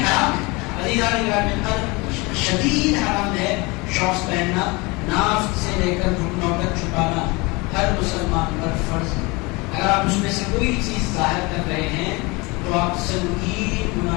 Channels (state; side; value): quieter; right; 25.6 dB